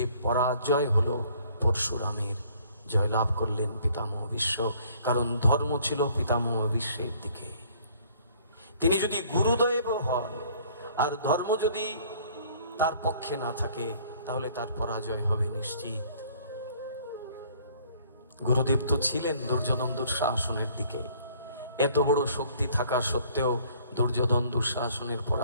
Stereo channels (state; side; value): inverted; both; correlation -0.58